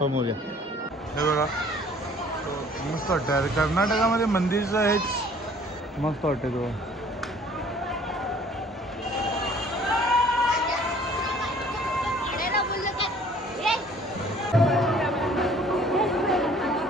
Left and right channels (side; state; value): both; normal; correlation 0.54